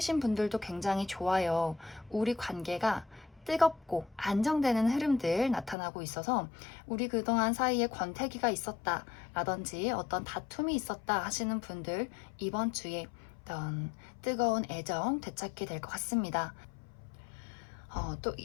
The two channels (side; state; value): right; drops out; at 5.8 s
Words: 분들도 굉장히 좋아요. 우리 관계가 뜨겁고 안정되는 흐름들 나타나고 있어서 우리 그동안 사이에 권태기가 있었다 라든지 어떤 다툼이 있었다 하시는 분들 이번 주에 어떤 뜨거운 애정 되찾게 될 것 같습니다. 또